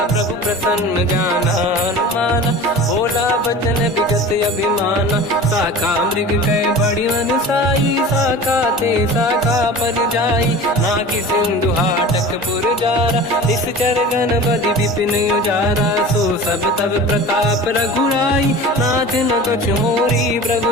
प्रभु प्रसन्न जाना अनुमाना बोला बचन विगत अभिमाना शाखा मृग कह बड़ी मन साई शाखा ते शाखा पर जाई नाकि सिंधु हाटक पुर जारा इस चरगन बदि विपिन उजारा सो सब तब प्रताप रघुराई नाथ न कछु मोरी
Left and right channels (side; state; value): both; normal; correlation 0.37